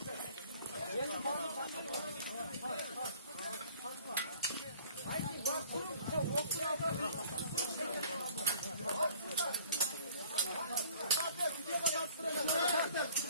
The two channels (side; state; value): both; inverted; correlation -0.51